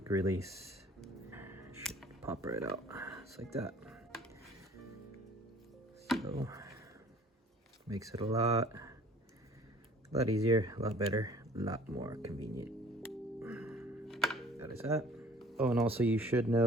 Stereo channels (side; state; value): both; normal; correlation 0.52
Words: release. Should pop right out just like that. So makes it a lot easier, a lot better, a lot more convenient. That is that. Oh, and also you should